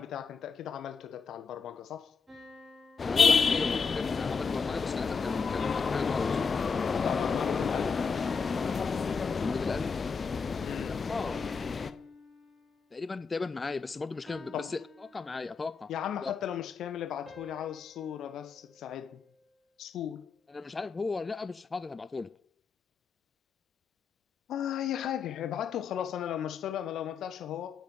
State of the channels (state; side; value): quieter; right; 5.4 dB